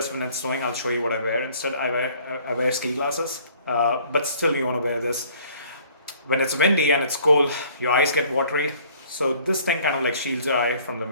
when it's snowing. I'll show you what I wear instead. I wear ski glasses. But still you want to wear this. When it's windy and it's cold, your eyes get watery. So this thing kind of like shields your eye from the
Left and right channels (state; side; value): inverted; both; correlation -0.56